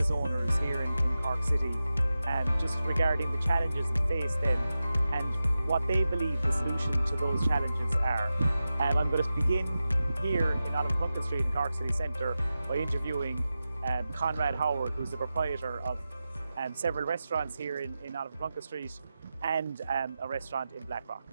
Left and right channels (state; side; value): inverted; both; correlation -0.93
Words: owners here in Cork City, just regarding the challenges that face them and what they believe the solution to those challenges are. I'm going to begin here in Olive Plunkett Street in Cork City Centre by interviewing Conrad Howard, who's the proprietor of several restaurants here in Olive Plunkett Street and a restaurant in Blackrock.